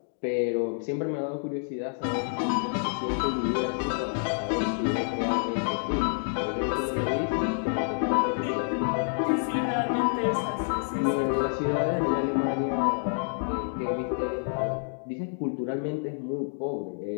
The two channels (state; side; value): silent; right; digital silence